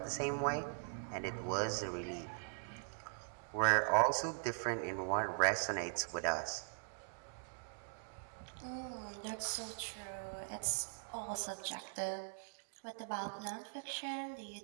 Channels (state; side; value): silent; left; digital silence